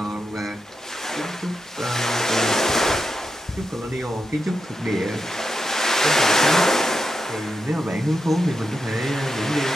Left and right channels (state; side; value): normal; both; correlation 0.87